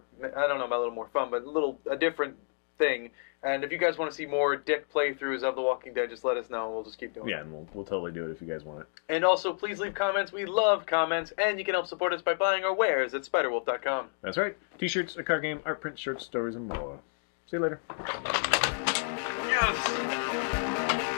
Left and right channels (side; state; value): right; silent; digital silence